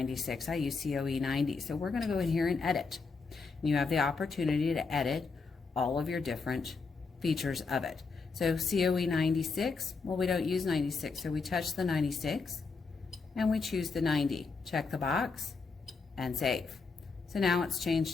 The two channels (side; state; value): right; quieter; 4.6 dB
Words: I use COE 90. So we're going to go in here and edit. You have the opportunity to edit all of your different features of it. So COE 96, well, we don't use 96, so we touch the 96 and we choose the 90. Check the box and save. So now it's